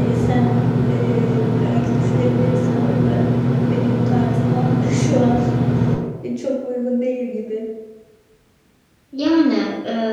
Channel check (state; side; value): identical; both; correlation 1.00